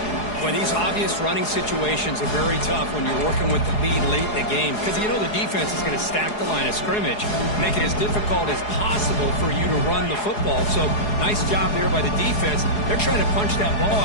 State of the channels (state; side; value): late; right; 4.8 ms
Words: Well, these obvious running situations are very tough when you're working with the lead late in the game because you know the defense is going to stack the line of scrimmage, make it as difficult as possible for you to run the football. So, nice job there by the defense. They're trying to punch that ball